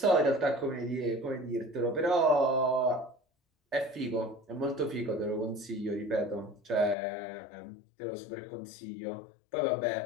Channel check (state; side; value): drops out; right; at 7.0 s